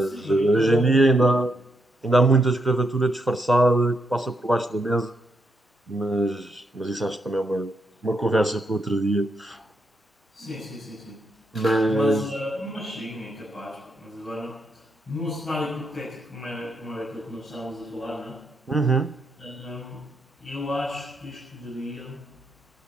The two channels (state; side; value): normal; both; correlation 0.80